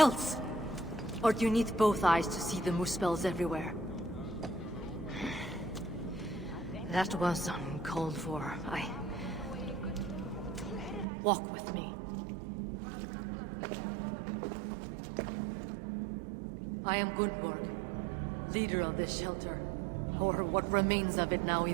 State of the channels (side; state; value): left; drops out; at 11.1 s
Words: Or do you need both eyes to see the muspels everywhere? That was uncalled for. Walk with me. I am Gunnborg, leader of this shelter. Or what remains of it now